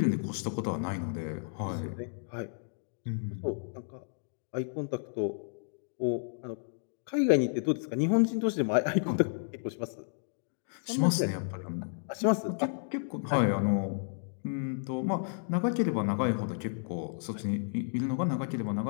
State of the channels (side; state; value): right; silent; digital silence